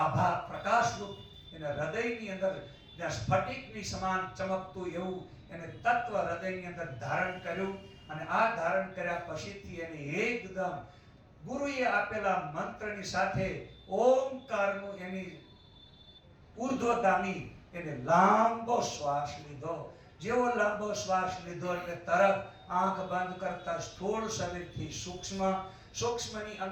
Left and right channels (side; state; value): both; identical; correlation 1.00